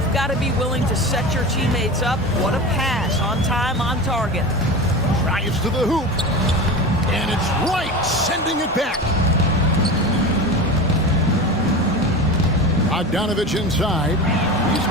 got to be willing to set your teammates up. What a pass, on time, on target. Drives to the hoop. And it's Wright sending it back. Bogdanovich inside. He's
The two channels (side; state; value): both; normal; correlation 0.28